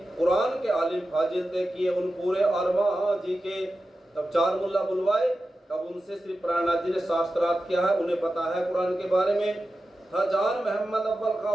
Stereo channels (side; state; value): both; normal; correlation 0.92